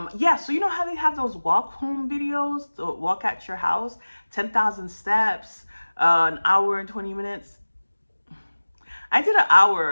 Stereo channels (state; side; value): inverted; both; correlation -1.00